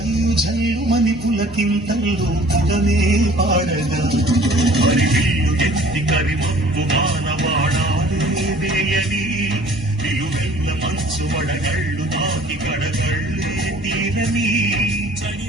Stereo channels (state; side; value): normal; both; correlation 0.51